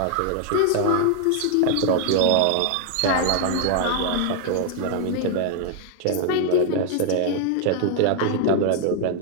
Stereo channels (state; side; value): different; both; correlation 0.00